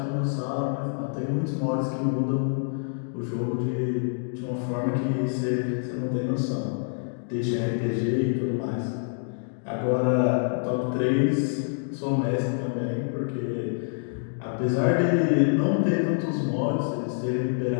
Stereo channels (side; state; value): right; silent; digital silence